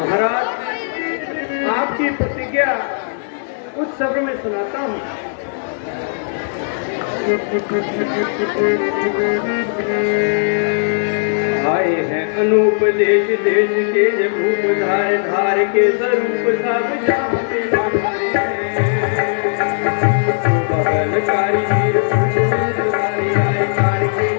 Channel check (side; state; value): right; silent; 58 dB below the other